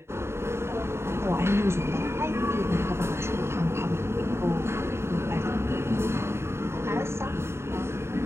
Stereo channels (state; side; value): late; left; 0.12 ms